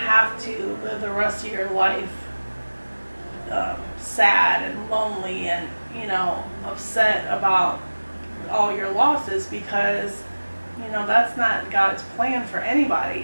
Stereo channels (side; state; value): both; inverted; correlation -1.00